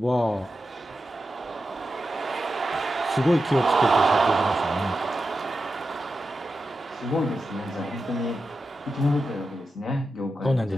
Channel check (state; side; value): normal; both; correlation 0.90